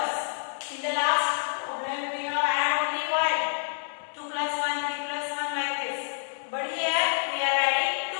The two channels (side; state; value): right; silent; digital silence